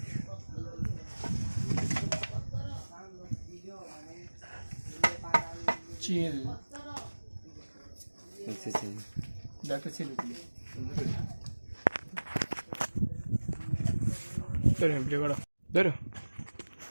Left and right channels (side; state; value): both; inverted; correlation -1.00